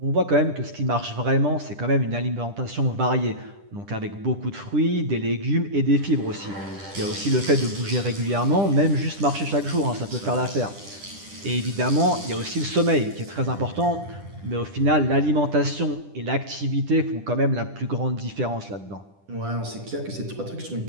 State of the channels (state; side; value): late; left; 10 ms